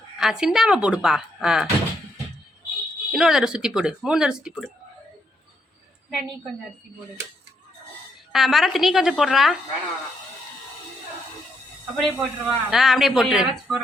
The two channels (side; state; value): both; normal; correlation 0.77